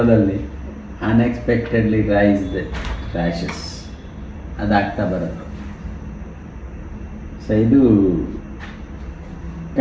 ಅನ್ಎಕ್ಸ್ಪೆಕ್ಟೆಡ್ಲಿ ರೈಸ್ಡ್ ರ್ಯಾಷಸ್ ಅದಾಗ್ತಾ ಬರುತ್ತೆ. ಸೊ ಇದು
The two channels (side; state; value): both; identical; correlation 1.00